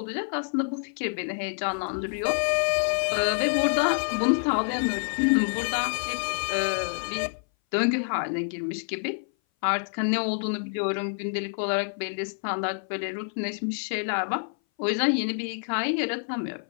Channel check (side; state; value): right; silent; 58 dB below the other